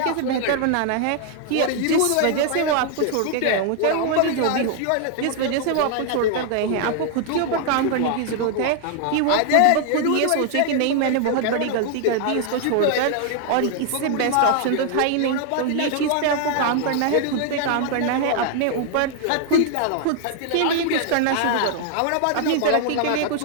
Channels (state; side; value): different; both; correlation 0.00